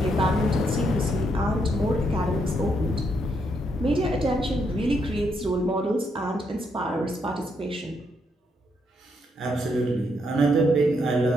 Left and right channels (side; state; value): both; normal; correlation 0.77